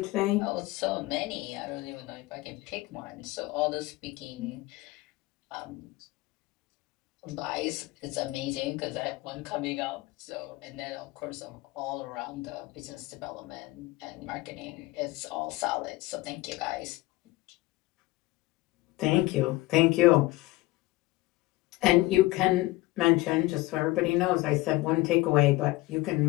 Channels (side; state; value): right; quieter; 19.8 dB